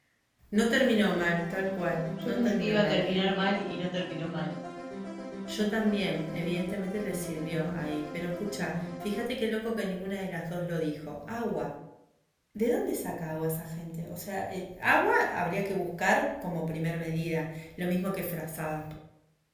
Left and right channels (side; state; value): both; identical; correlation 1.00